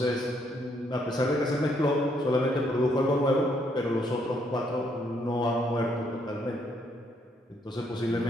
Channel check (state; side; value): normal; both; correlation 0.72